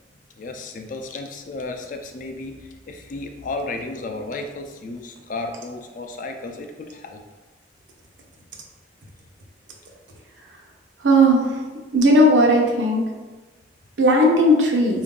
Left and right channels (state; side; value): normal; both; correlation 0.37